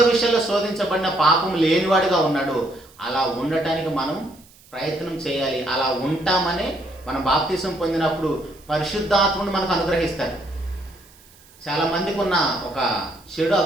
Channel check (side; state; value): right; noise; hiss, 26 dB below the sound